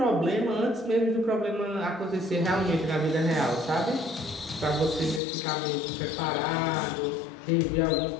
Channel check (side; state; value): right; drops out; at 5.2 s